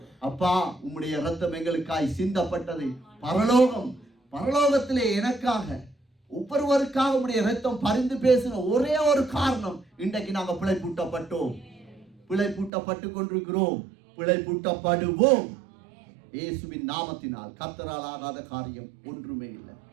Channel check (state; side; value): drops out; left; at 12.7 s